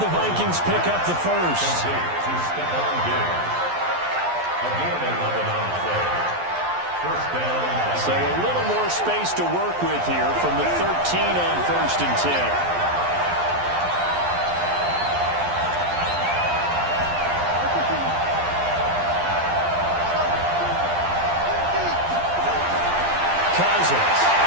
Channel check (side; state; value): left; late; 11 ms